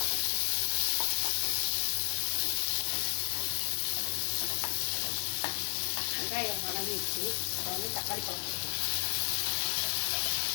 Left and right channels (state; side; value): silent; right; digital silence